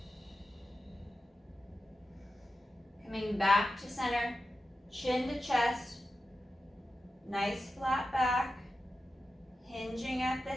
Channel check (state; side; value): normal; both; correlation 0.91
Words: Coming back to center, chin to chest, nice flat back, hinging at the